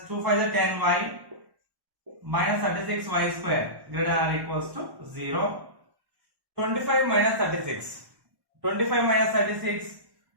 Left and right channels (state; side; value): late; left; 1.1 ms